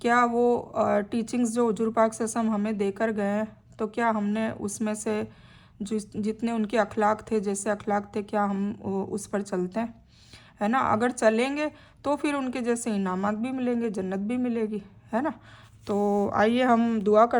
क्या वो टीचिंग्स जो हुजूर पाक सल्लल्लाहु अलैहि वसल्लम हमें देकर गए हैं, तो क्या हमने उसमें से जितने उनके अखलाक थे, जैसे अखलाक थे, क्या हम उस पर चलते हैं, है ना। अगर चलेंगे तो फिर उनके जैसे इनामात भी मिलेंगे, जन्नत भी मिलेगी, है ना। तो आइए हम दुआ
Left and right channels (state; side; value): identical; both; correlation 1.00